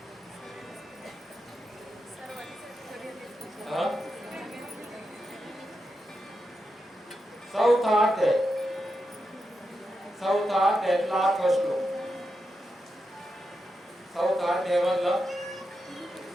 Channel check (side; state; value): both; normal; correlation 0.87